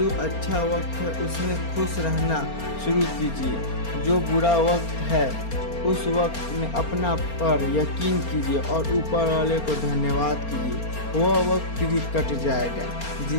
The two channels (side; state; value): right; late; 4.3 ms